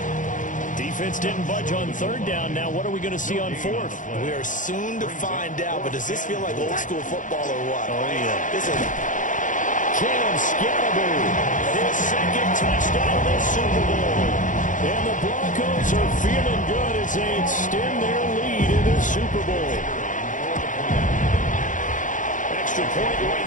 Defense didn't budge on 3rd down. Now what are we going to see on 4th? We are soon to find out, but does this feel like old school football or what? Oh, yeah. This is Cam Scatterby, his 2nd touchdown of the Super Bowl. And the Broncos are feeling good as they extend their lead in this Super Bowl. Extra point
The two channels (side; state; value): right; late; 0.37 ms